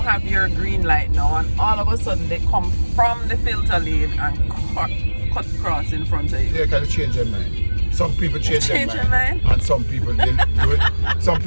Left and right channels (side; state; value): both; inverted; correlation -1.00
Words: your green light now, and all of a sudden they come from the filter lane and cut across in front of you. Yeah, can change their mind. Some people change their mind, and some people do it. Some